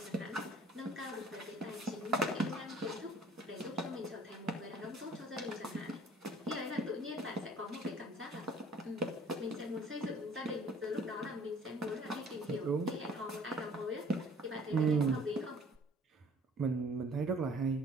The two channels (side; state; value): both; normal; correlation 0.53